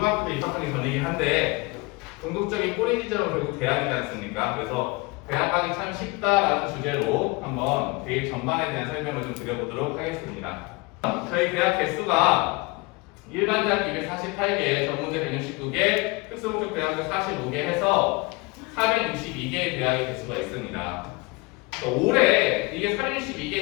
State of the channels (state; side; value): quieter; right; 26.0 dB